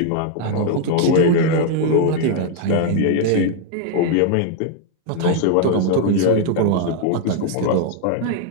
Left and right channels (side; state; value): both; different; correlation 0.00